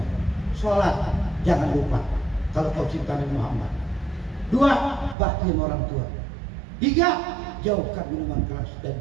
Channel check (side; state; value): left; drops out; at 5.2 s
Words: Sholat, jangan lupa kalau kau cinta Nabi Muhammad. 2, bakti sama orang tua. 3, jauhkan minuman keras dan